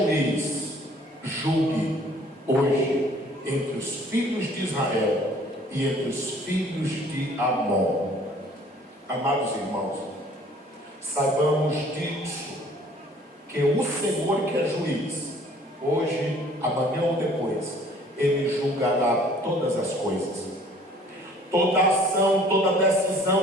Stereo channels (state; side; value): normal; both; correlation 0.55